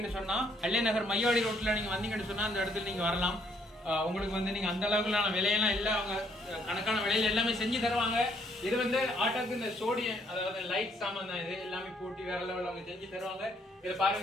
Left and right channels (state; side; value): normal; both; correlation 0.68